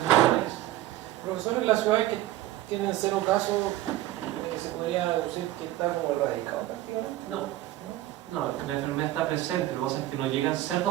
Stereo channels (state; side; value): quieter; left; 14.9 dB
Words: país. Profesor, en las ciudades que tienen 0 casos, ¿se podría decir que está como erradicado prácticamente? No, la enfermedad está presente, lo que pasa es que no llegan